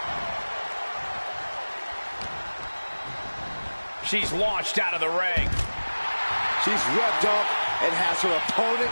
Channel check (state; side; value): inverted; both; correlation -1.00